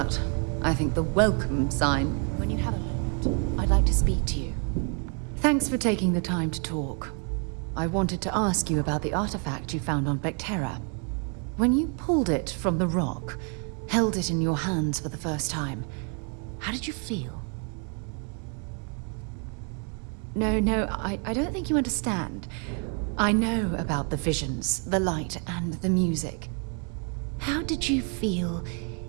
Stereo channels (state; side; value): quieter; left; 39.8 dB